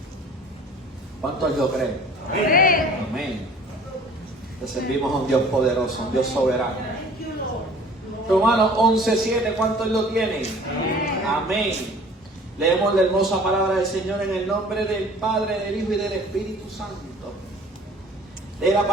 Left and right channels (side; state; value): both; normal; correlation 0.49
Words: ¿Cuántos lo creen? Amén. Amén. Le servimos a un Dios poderoso, un Dios soberano. Romanos 11, 7. ¿Cuántos lo tienen? Amén. Leemos la hermosa palabra del Señor en el nombre del Padre, del Hijo y del Espíritu Santo. Lee la